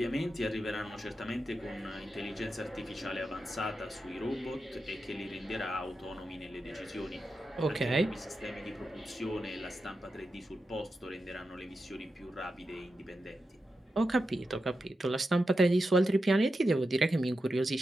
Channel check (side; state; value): both; normal; correlation 0.89